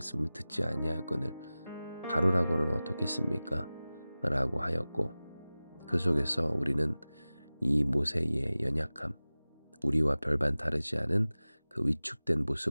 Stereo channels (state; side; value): inverted; both; correlation -0.97